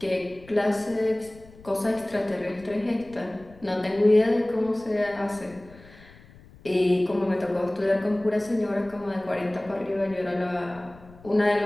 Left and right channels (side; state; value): left; noise; rumble, 23 dB below the sound